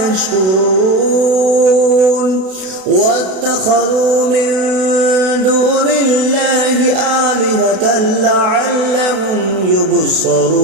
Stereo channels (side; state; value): left; late; 32 ms